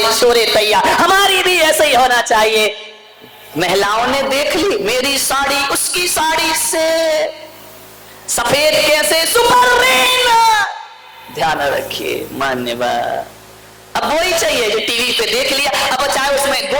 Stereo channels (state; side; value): identical; both; correlation 1.00